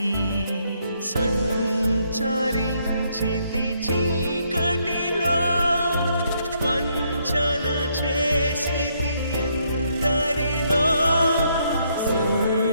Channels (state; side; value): inverted; both; correlation -0.73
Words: సంచరించితి చీకటిలో వంచన చేసితి ఎందరినో